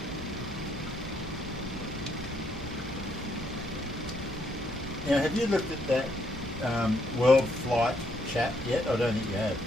Now, have you looked at that World Flight chat yet? I don't think you have.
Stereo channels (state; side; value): normal; both; correlation 0.72